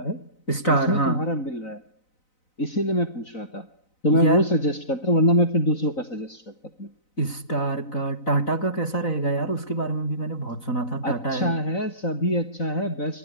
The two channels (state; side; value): late; right; 4.0 ms